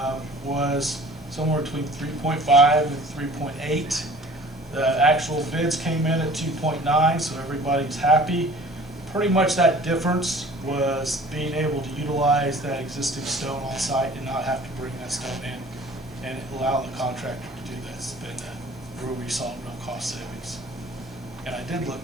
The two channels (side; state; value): both; normal; correlation 0.48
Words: was somewhere between 3.5 and 3.8. The actual bids came in at 2.9, so everybody's happy. Pretty much that difference was being able to utilize that existing stone on site and not have to bring that stone in, and allow the contractor to do that. It's been where we saw real cost savings. And I did